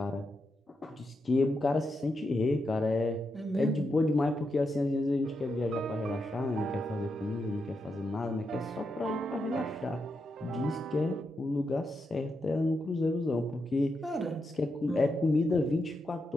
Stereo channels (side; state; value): both; normal; correlation 0.85